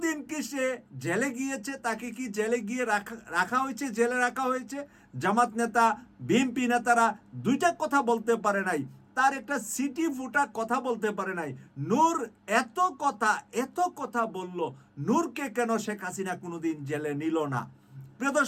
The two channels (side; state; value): both; identical; correlation 1.00